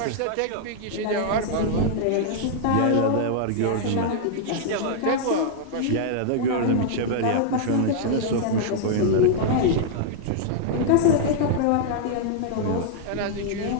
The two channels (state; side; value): different; both; correlation -0.01